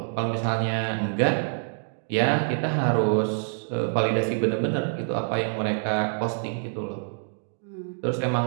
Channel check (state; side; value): silent; left; digital silence